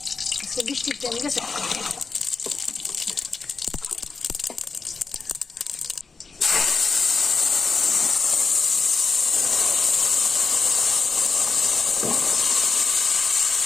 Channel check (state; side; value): quieter; right; 4.6 dB